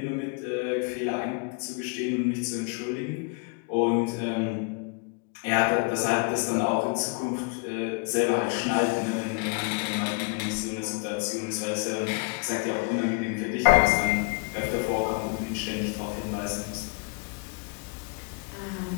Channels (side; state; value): right; quieter; 33.0 dB